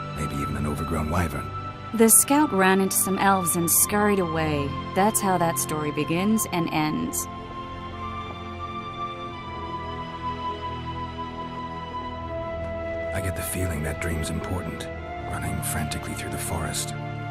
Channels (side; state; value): both; identical; correlation 1.00